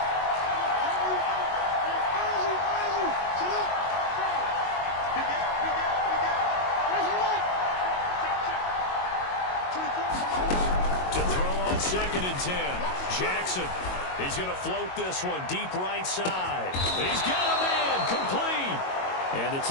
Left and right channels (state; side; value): late; right; 22 ms